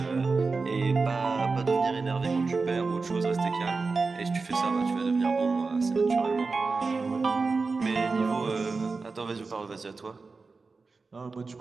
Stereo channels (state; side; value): quieter; left; 4.2 dB